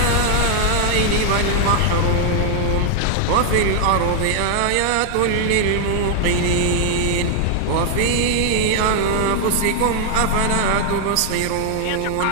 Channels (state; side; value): different; both; correlation 0.00